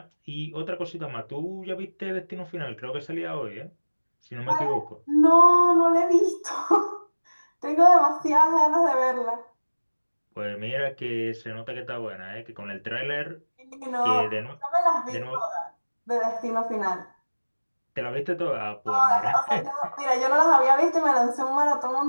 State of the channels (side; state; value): both; inverted; correlation -1.00